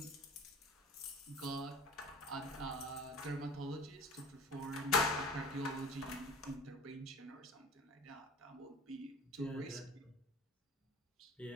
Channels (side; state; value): both; normal; correlation 0.41